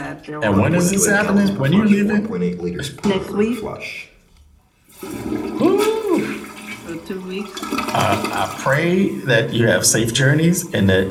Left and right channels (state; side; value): identical; both; correlation 1.00